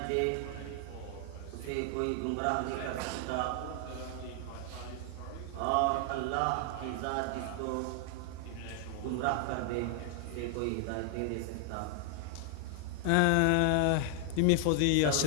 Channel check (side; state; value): both; different; correlation 0.00